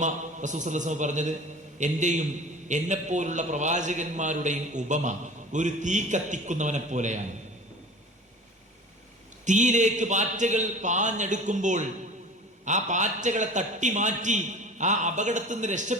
റസൂൽ സല്ലല്ലാഹു അലൈഹി വസല്ലം പറഞ്ഞത്? എന്റെയും എന്നെപ്പോലുള്ള പ്രവാചകന്മാരുടെയും ഉപമ ഒരു തീ കത്തിക്കുന്നവനെ പോലെയാണ്. തീയിലേക്ക് പാറ്റകൾ പാഞ്ഞെടുക്കുമ്പോൾ ആ പാറ്റകളെ തട്ടി മാറ്റി ആ അപകടത്തിൽ നിന്ന്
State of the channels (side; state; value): both; normal; correlation 0.40